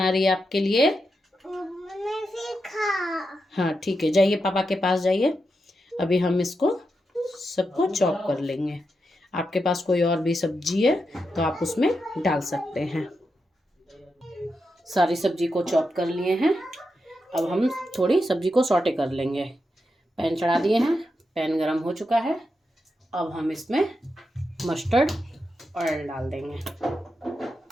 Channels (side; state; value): both; normal; correlation 0.86